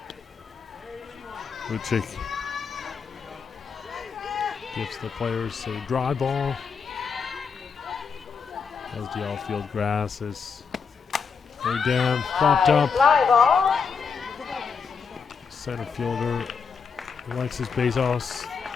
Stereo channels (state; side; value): quieter; right; 5.9 dB